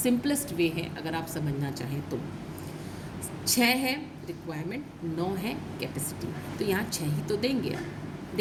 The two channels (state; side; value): identical; both; correlation 1.00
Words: वे है अगर आप समझना चाहें तो। 6 है रिक्वायरमेंट, 9 है कैपेसिटी, तो यहाँ 6 ही तो देंगे आप,